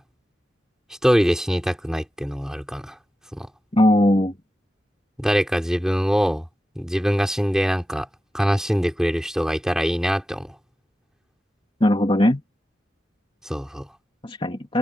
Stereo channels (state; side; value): normal; both; correlation 0.92